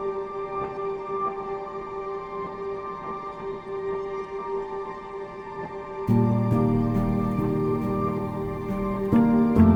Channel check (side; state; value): both; identical; correlation 1.00